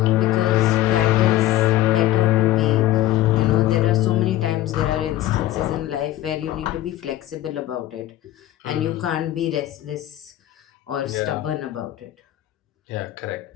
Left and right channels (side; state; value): right; quieter; 14.6 dB